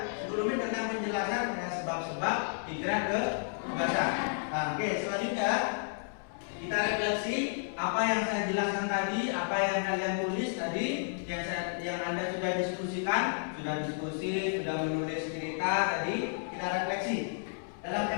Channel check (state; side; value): silent; right; 56 dB below the other